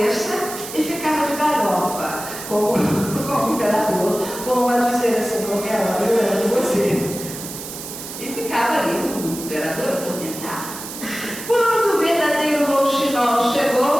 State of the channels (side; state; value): right; noise; hiss, 10 dB below the sound